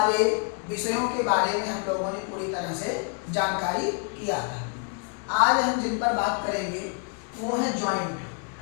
विषयों के बारे में हम लोगों ने पूरी तरह से जानकारी किया था। आज हम जिन पर बात करेंगे वो है जॉइंट,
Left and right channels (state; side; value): quieter; right; 38.3 dB